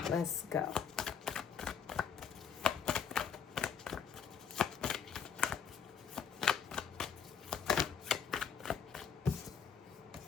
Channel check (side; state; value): right; quieter; 7.1 dB